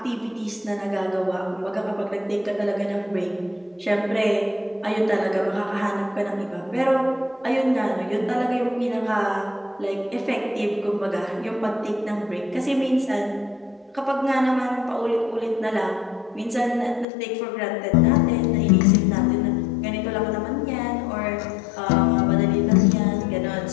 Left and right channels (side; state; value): right; drops out; at 17.1 s